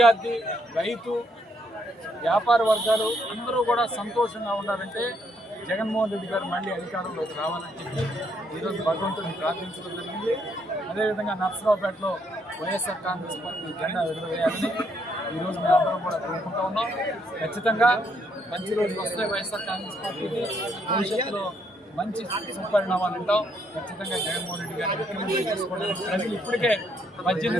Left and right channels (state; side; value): normal; both; correlation 0.72